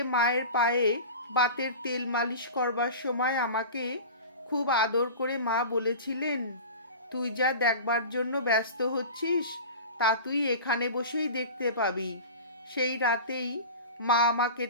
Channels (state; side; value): inverted; both; correlation -0.34